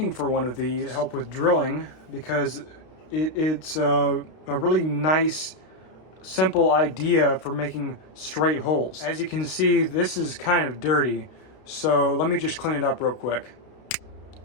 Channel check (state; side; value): late; right; 32 ms